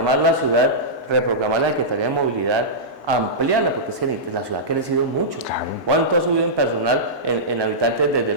la ciudad, reprogramar la Secretaría de Movilidad, ampliarla, porque es que la ciudad ha crecido mucho. Claro. ¿Cuánto ha subido en personal, en habitantes desde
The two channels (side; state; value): right; late; 1.9 ms